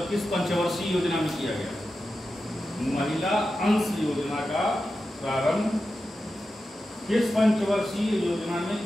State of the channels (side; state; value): both; normal; correlation 0.91